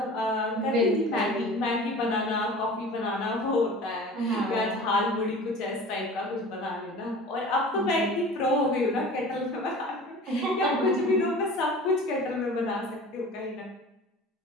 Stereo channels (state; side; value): normal; both; correlation 0.40